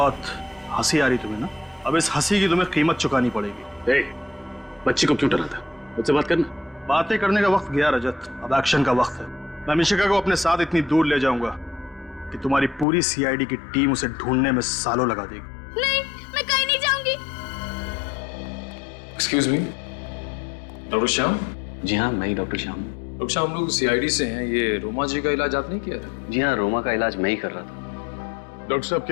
हंसी आ रही तुम्हें ना? अब इस हंसी की तुम्हें कीमत चुकानी पड़ेगी। बच्ची को क्यों डराता? मुझसे बात करना। बातें करने का वक्त गया रजत, अब एक्शन का वक्त है। मैं मिशिका को अपने साथ इतनी दूर ले जाऊंगा कि तुम्हारी पूरी सीआईडी की टीम उसे ढूंढने में सालों लगा देगी। नहीं, मैं कहीं नहीं जाऊंगी। Excuse me, doctor Shyam? जी हाँ, मैं ही डॉक्टर श्याम। डॉक्टर श्याम, हम लोग सीआईडी से हैं। ये रोमा जी का इलाज आपने किया था? जी हाँ, रोमा का इलाज मैं ही कर रहा था। डॉक्टर साहब,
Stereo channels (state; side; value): drops out; right; at 12.9 s